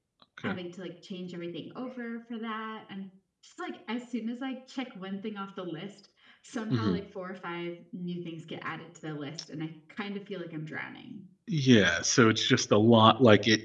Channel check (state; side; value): identical; both; correlation 1.00